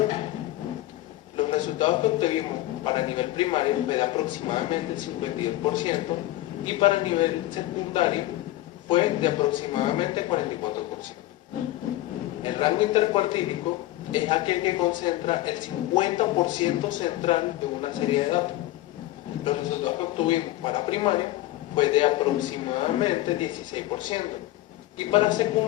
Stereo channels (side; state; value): right; quieter; 16.2 dB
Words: Los resultados que obtuvimos para el nivel primario fue de aproximadamente el 52% y para el nivel secundario fue de aproximadamente 44%. El rango intercuartílico es aquel que concentra el 50% central de una serie de datos. Los resultados que obtuvimos para primaria fue de aproximadamente 16% y para